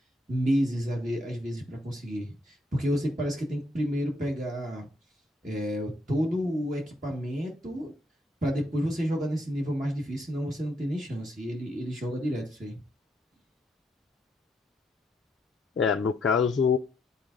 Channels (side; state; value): both; normal; correlation 0.76